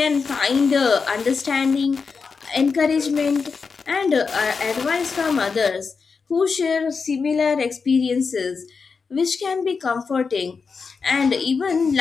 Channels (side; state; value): right; quieter; 5.1 dB